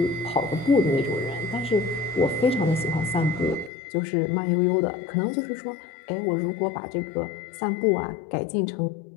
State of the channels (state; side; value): drops out; right; at 3.7 s